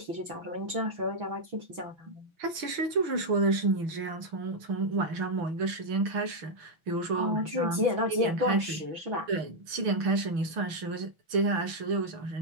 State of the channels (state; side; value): late; left; 6.1 ms